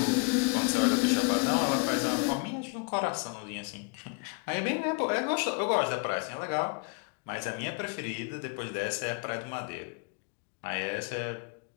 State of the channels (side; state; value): right; quieter; 33.5 dB